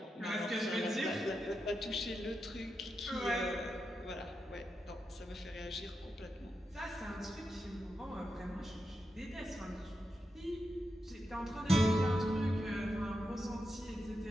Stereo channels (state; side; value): normal; both; correlation 0.87